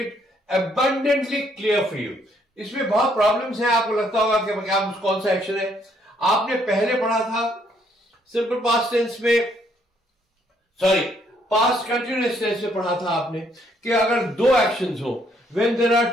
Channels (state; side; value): normal; both; correlation 0.69